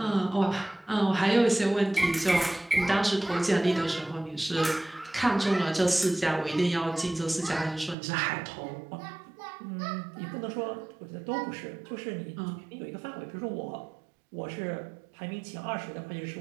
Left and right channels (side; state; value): left; drops out; at 8.0 s